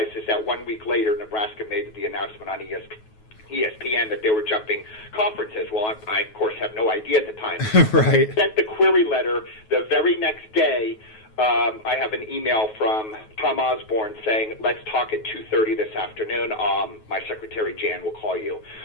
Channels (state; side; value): late; right; 9.3 ms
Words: is that 1 week later, Nebraska made the announcement on ESPN that they were jumping conferences. Well, I of course, have no idea at the time. Right. Sent the query letter the very next day. I have an email from Tom Osborne saying, let's talk at 2:30 this afternoon. My secretary, Jan, will call you.